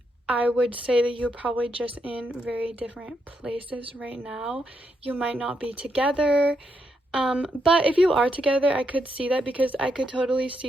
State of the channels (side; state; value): both; normal; correlation 0.80